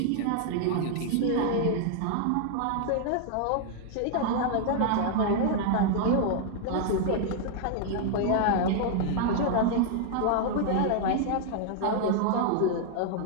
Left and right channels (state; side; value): different; both; correlation 0.00